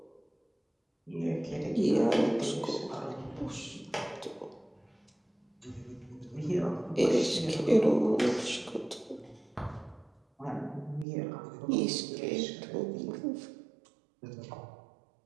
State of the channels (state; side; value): drops out; left; at 11.1 s